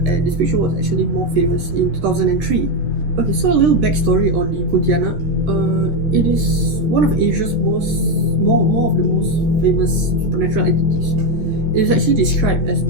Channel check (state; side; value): late; left; 14 ms